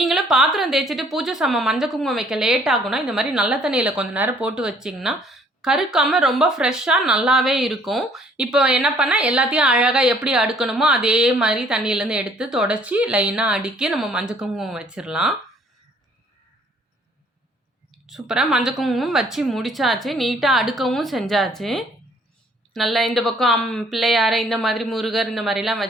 பாத்திரம் தேய்ச்சிட்டு பூஜை சாமான் மஞ்சள் குங்குமம் வைக்க லேட் ஆகும்னா இந்த மாதிரி நல்ல தண்ணியில் கொஞ்சம் நேரம் போட்டு வச்சிங்கன்னா கருக்காமல் ரொம்ப ஃப்ரெஷ்ஷாக நல்லாவே இருக்கும். இப்போ என்ன பண்ணால் எல்லாத்தையும் அழகாக எப்படி அடுக்கணுமோ அதே மாதிரி தண்ணியிலேருந்து எடுத்து தொடச்சி லைனாக அடுக்கி நம்ம மஞ்சள் குங்குமம் வச்சிடலாம். சூப்பராக மஞ்சள் குங்குமம் வச்சு முடிச்சாச்சு. நீட்டாக அடுக்கவும் செஞ்சாச்சு. நல்லா இந்த பக்கம் பிள்ளையார், இந்த மாதிரி முருகர் இந்த மாதிரிலாம்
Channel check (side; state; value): both; normal; correlation 0.60